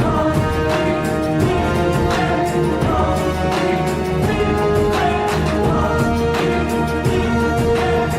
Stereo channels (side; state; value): both; identical; correlation 1.00